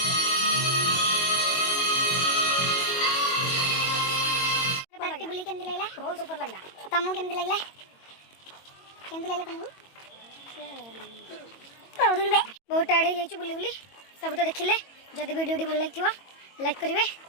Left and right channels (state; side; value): late; right; 22 ms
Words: पार्क बुली केमती लगला बहुत सुपर लगला तुमको केमती लगला तुमको बहुत टायर्ड हो जाइए बुली बुली सब तो देखिले जदि वीडियो भल लगी लाइक करेंगे